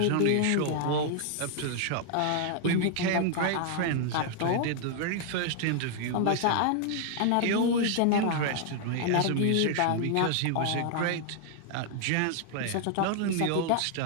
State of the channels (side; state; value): both; different; correlation 0.00